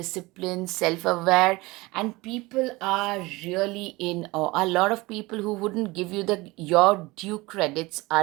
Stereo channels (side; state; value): left; quieter; 22.1 dB